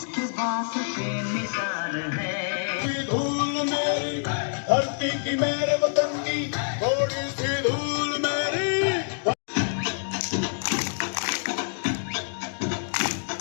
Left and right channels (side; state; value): right; silent; digital silence